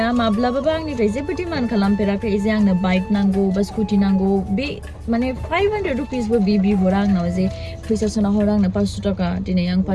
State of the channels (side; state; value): both; identical; correlation 1.00